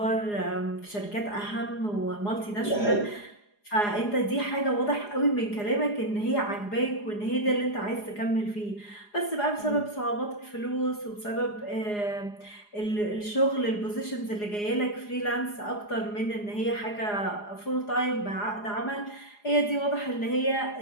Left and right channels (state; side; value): late; right; 4.8 ms